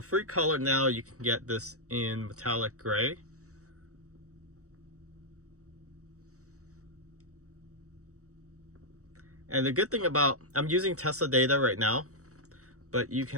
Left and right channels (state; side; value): late; left; 0.65 ms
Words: free color now, you can get this in metallic gray. And the good thing about, I'm using Tesla data right now, but you